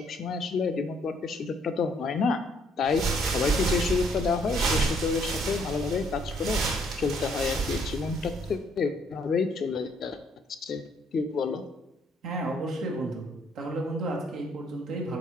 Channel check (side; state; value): both; normal; correlation 0.66